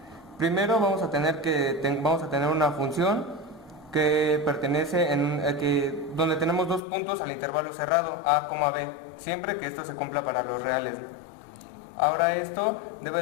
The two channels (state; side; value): drops out; right; at 6.8 s